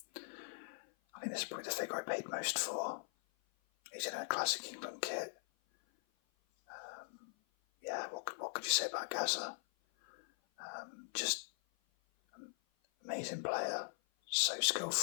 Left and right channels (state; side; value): silent; right; 50 dB below the other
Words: I think this is probably the figure I paid most for. He's in a classic England kit. What could you say about Gazza? Just amazing player, so